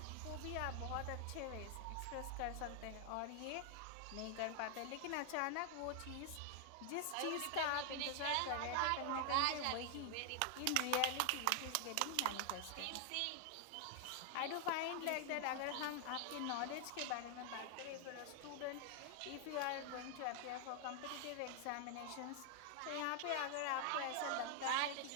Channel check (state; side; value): different; both; correlation 0.00